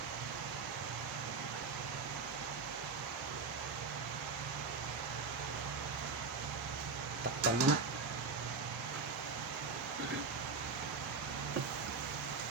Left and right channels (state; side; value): quieter; left; 4.5 dB